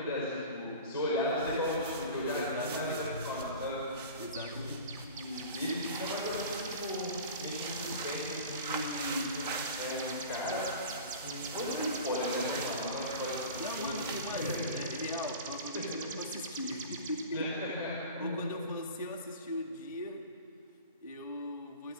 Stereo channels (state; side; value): inverted; both; correlation -0.37